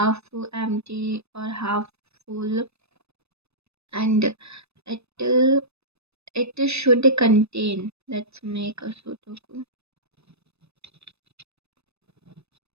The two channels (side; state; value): left; late; 0.79 ms